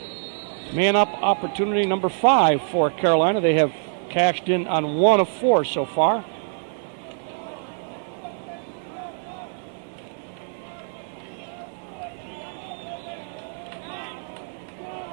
Man up opportunity number 5 for Carolina. They have cashed in on 1 of 4 so far.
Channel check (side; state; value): left; silent; 62 dB below the other